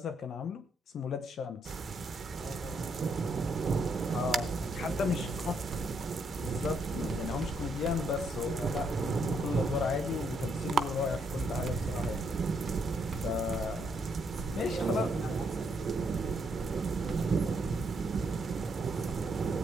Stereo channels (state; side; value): normal; both; correlation 0.74